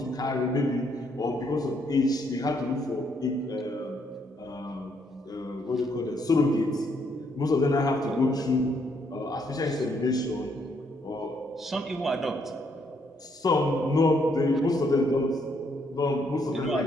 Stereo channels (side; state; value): both; normal; correlation 0.72